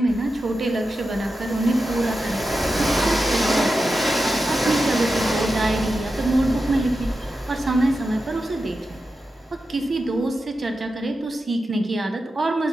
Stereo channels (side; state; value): both; normal; correlation 0.91